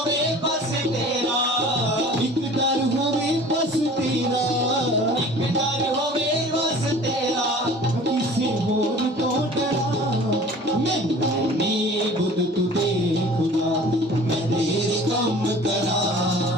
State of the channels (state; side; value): normal; both; correlation 0.45